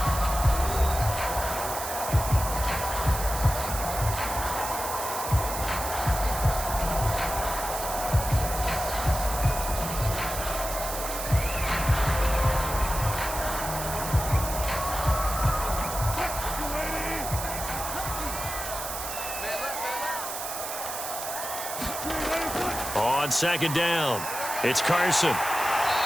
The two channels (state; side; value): noise; right; hiss, 6 dB below the sound